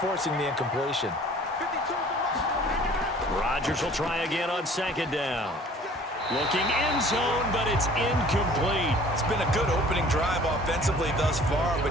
the incompletion. Rodgers will try again on second down. Looking end zone, but it's incomplete. It's been a good opening drive offensively thus far,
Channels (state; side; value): normal; both; correlation 0.50